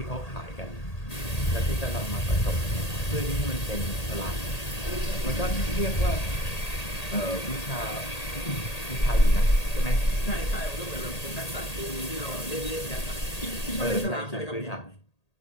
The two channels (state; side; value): late; right; 1.8 ms